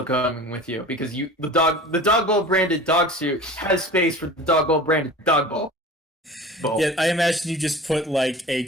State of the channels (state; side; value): normal; both; correlation 0.38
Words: coming with you because the dog bowl branded dog suit has space for the dog bowl branded dog bowl. Yeah, I imagine you just put like a